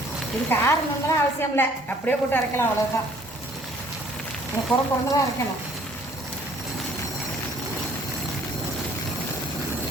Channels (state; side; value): normal; both; correlation 0.58